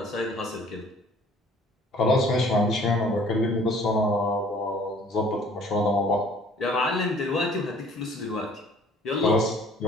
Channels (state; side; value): normal; both; correlation 0.55